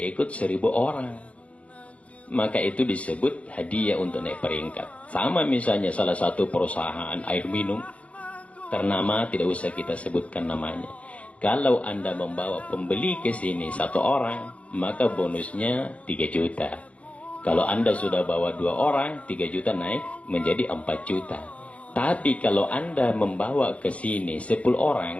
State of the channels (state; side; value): late; right; 0.064 ms